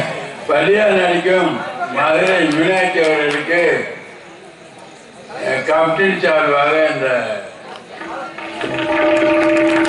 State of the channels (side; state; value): both; identical; correlation 1.00